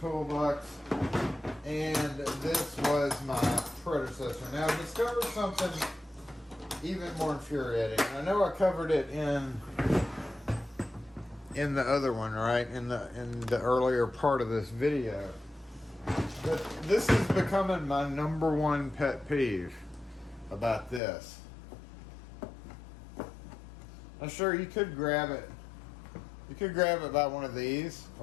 and this was my predecessor. Now I discovered something even more infuriating. I know I covered it in the other one, right? In the earlier part of this video. But this is becoming my number one pet peeve about this. I'm sure you could grab it. You could grab it by one of these,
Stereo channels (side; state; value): right; drops out; at 21.0 s